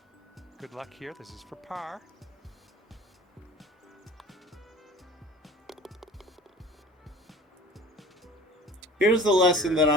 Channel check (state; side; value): normal; both; correlation 0.44